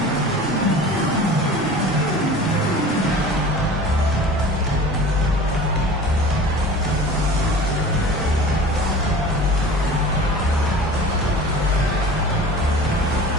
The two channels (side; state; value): both; normal; correlation 0.39